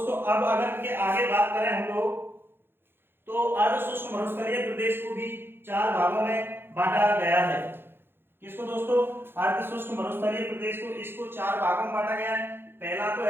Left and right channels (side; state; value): left; late; 0.10 ms